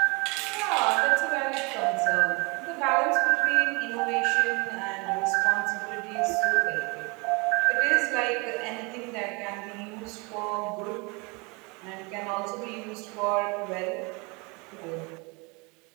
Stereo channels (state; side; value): quieter; left; 28.9 dB